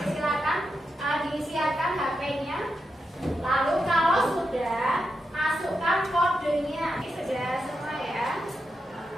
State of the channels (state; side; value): normal; both; correlation 0.87